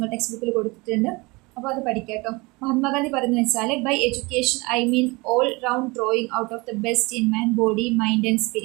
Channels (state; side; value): quieter; left; 25.0 dB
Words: ടെക്സ്റ്റ് ബുക്കിൽ കൊടുത്തിട്ടുണ്ട്. അപ്പോൾ അത് പഠിക്കാം കേട്ടോ. മഹാത്മാഗാന്ധി പറയുന്നത് വെച്ചാൽ by education I mean all round drawing out of the best in man body mind and